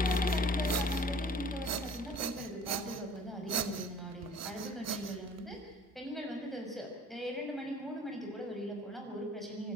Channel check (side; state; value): both; normal; correlation 0.49